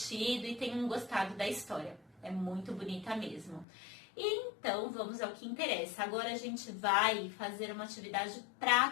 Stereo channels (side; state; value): right; drops out; at 3.7 s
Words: e tenham gostado da história. É muito bonita mesmo. E então, vamos ao que interessa. Agora a gente vai fazer uma atividade